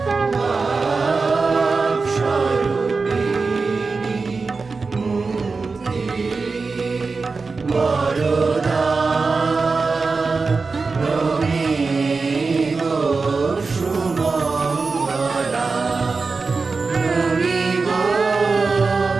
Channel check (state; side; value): quieter; left; 4.3 dB